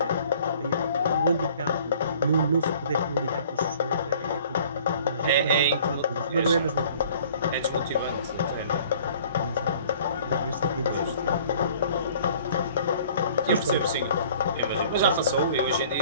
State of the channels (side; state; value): both; inverted; correlation -0.52